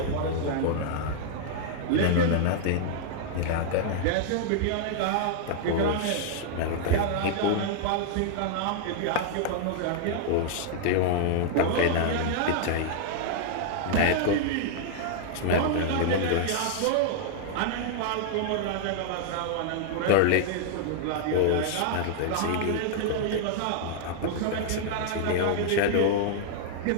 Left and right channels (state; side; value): different; both; correlation -0.01